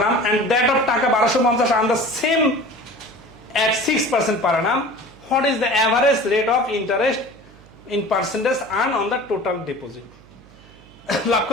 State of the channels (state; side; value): noise; right; hum, 25 dB below the sound